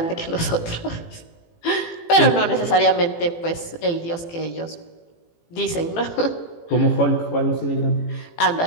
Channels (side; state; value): right; late; 18 ms